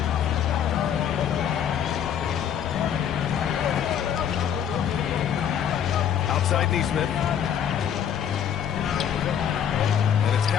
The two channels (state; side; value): quieter; right; 9.0 dB